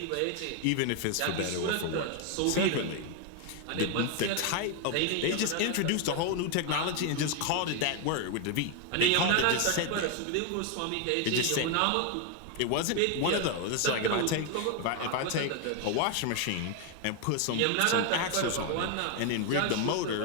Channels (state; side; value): different; both; correlation 0.01